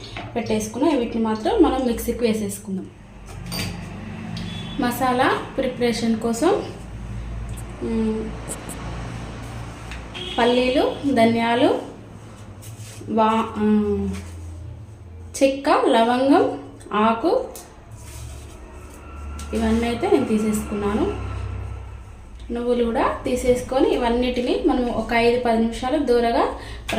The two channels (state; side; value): identical; both; correlation 1.00